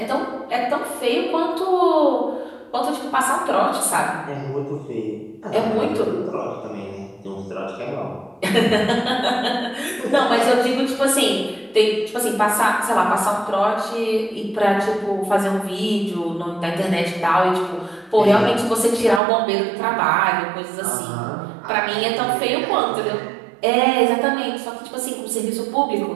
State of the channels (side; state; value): left; drops out; at 19.2 s